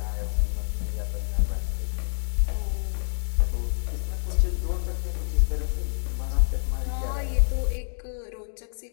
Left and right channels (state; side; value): silent; right; digital silence